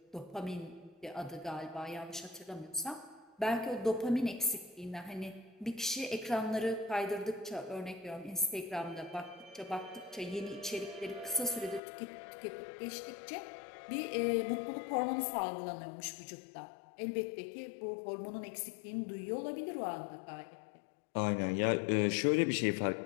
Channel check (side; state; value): right; drops out; at 11.8 s